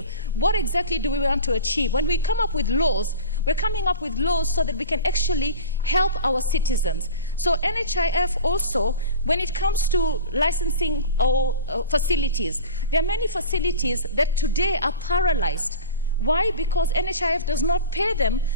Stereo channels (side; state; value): both; inverted; correlation -0.35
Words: What exactly do we want to achieve? When we come up with laws, we're coming up with laws so that we can actually help our citizens. So NHIF also, when it comes to licensing or facilities, there are many facilities that today are paralyzed. Why? Because NHIF does not pay them